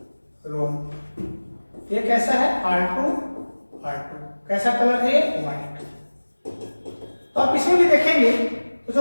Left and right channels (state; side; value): inverted; both; correlation -1.00